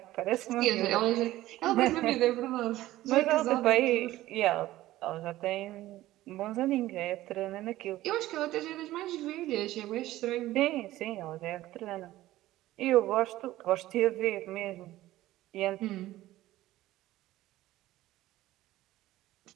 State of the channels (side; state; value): left; quieter; 15.8 dB